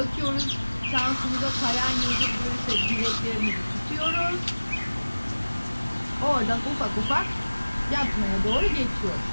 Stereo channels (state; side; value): inverted; both; correlation -1.00